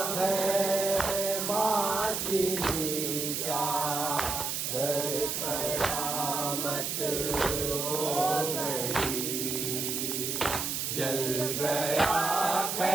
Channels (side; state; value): right; noise; hiss, 1 dB below the sound